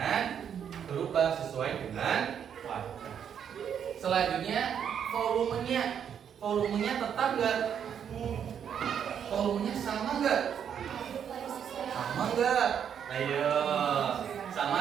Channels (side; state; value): left; quieter; 8.4 dB